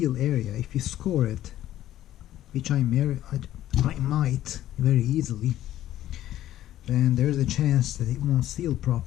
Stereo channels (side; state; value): right; quieter; 13.1 dB